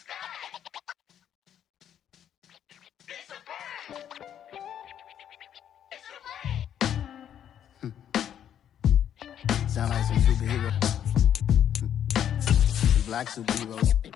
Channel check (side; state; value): right; quieter; 9.8 dB